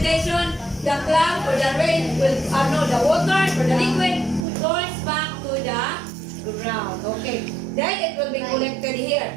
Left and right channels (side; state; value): left; drops out; at 4.4 s